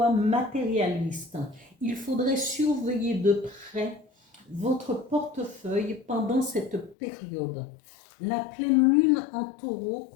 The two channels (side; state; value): right; drops out; at 7.0 s